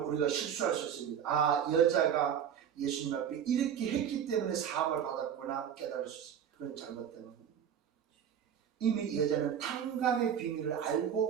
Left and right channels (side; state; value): left; quieter; 8.6 dB